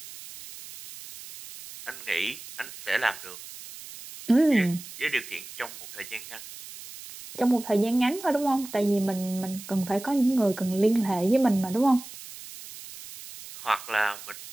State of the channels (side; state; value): right; noise; hiss, 14 dB below the sound